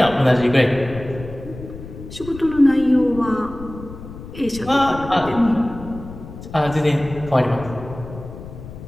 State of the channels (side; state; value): left; noise; rumble, 13 dB below the sound